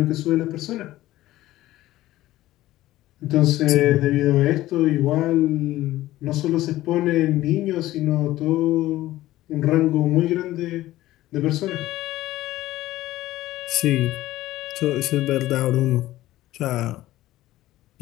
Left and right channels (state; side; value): quieter; right; 15.7 dB